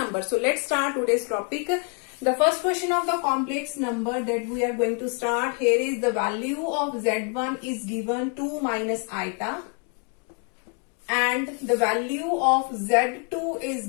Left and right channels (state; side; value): quieter; right; 39.6 dB